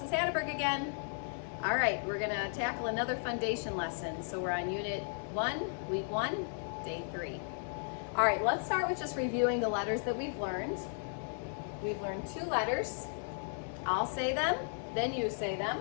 Hatterberg again. All right, we're gonna tackle another foundation lesson. So we're on Unit 1, Week 1, Day 3. All right, let's start with just reviewing the letters that we've learned. We've learned 2 letters. I'll say them, then you say them.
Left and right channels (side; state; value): right; silent; 54 dB below the other